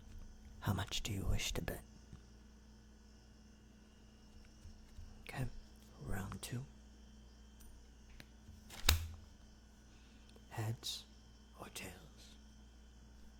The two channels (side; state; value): both; identical; correlation 1.00